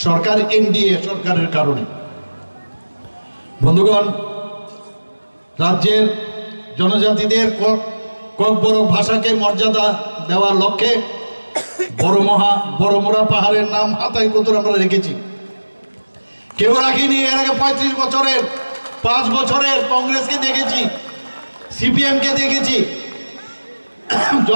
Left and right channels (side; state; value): both; inverted; correlation -1.00